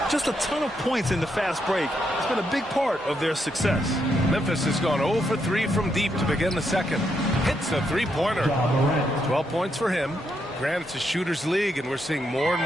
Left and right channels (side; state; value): both; normal; correlation 0.79